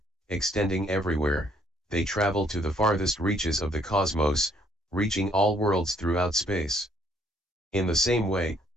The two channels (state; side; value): normal; both; correlation 0.65